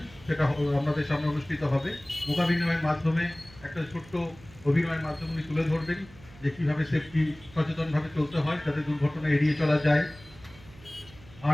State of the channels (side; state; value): right; noise; hum, 22 dB below the sound